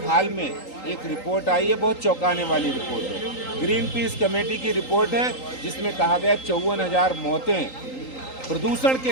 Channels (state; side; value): late; right; 3.8 ms